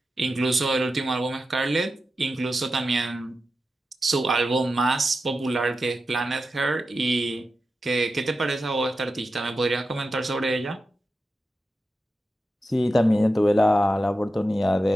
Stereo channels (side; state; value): both; normal; correlation 0.91